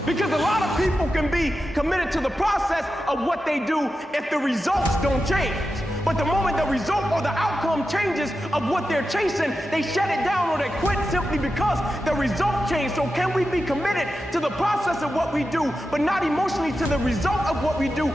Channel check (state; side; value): normal; both; correlation 0.91